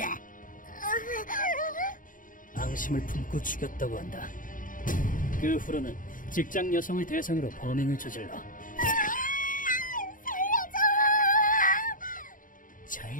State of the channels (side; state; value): right; late; 0.39 ms